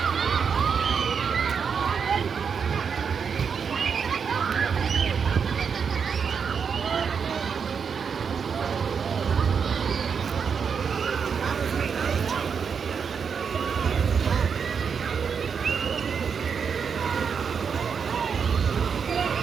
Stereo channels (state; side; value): quieter; left; 6.4 dB